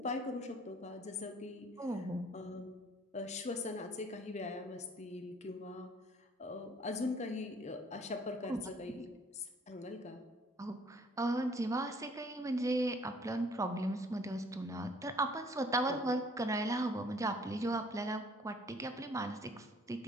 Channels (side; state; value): both; normal; correlation 0.58